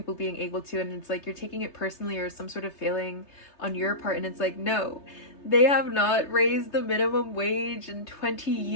being able to, and it's like you're taking it personally or some sort of failing on your part, and it's like, no, they have not raised the minimum wage in 20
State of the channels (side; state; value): right; late; 3.3 ms